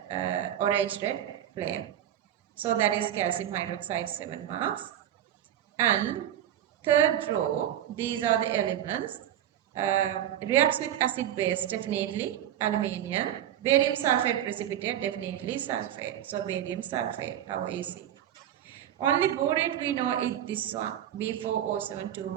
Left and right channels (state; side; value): quieter; left; 11.2 dB